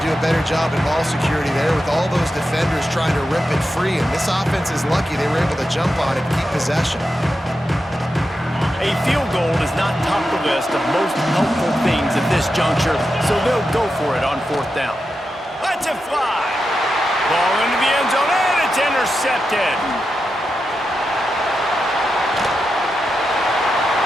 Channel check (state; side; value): normal; both; correlation 0.89